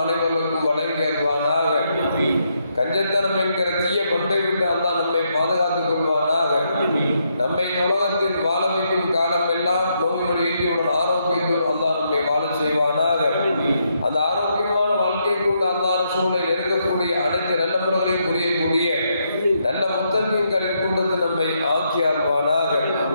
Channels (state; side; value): inverted; both; correlation -0.78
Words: அனைவருக்கும் வழங்கி அருள்வானாக. கஞ்சத்தனம் என்கிற தீய பட்டை விட்டு அல்லாஹ் நம்மை பாதுகாத்துக் கொள்வானாக. நம்மை உலகத்தில் வாழ வைக்கும் காலம் எல்லாம் நோய் நொடியுடன் ஆரோக்கியத்தோடு அல்லாஹ் நம்மை வாழ செய்வானாக. அந்த ஆரோக்கியமான வாழ்க்கை கொண்டு அல்லாஹ் ரசூலை நெருங்கக்கூடிய அனைத்து நல்ல முறைகளையும் புரியக்கூடிய நல்ல முத்தகங்களின் கொண்டு நம்மை ஆக்கி அருள்வானாக.